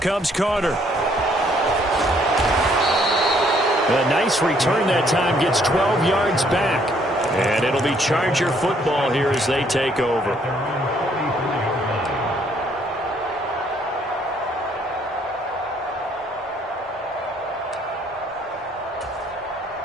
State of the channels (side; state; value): both; normal; correlation 0.66